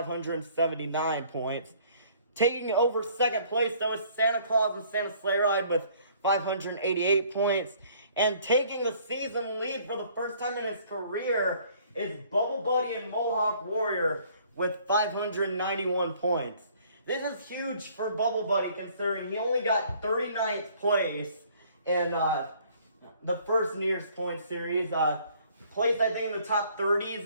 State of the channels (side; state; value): both; inverted; correlation -0.58